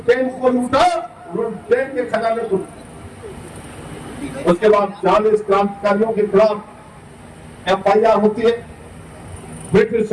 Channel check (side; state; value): both; identical; correlation 1.00